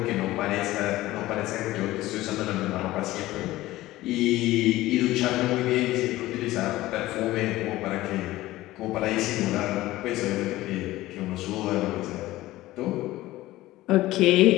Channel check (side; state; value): right; quieter; 17.0 dB